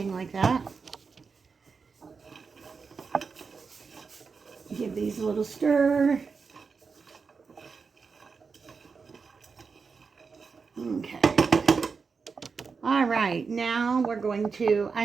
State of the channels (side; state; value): left; quieter; 5.1 dB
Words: like that. Give these a little stir. Okay. All right, now we're going to, I